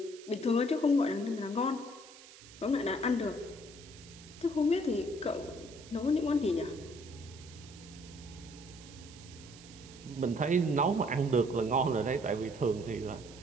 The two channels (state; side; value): noise; right; hiss, 19 dB below the sound